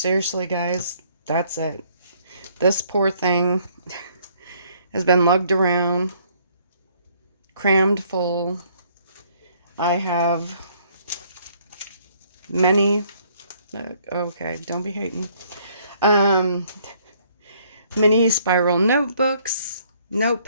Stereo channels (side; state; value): both; inverted; correlation -0.64